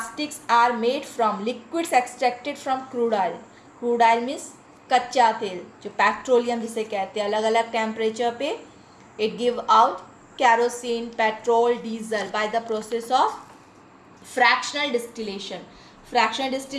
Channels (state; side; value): identical; both; correlation 1.00